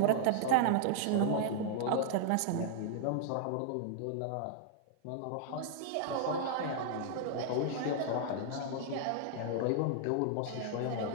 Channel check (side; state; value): both; different; correlation 0.00